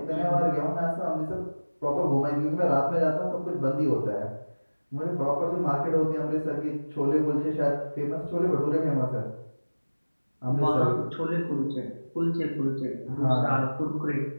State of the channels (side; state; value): both; inverted; correlation -1.00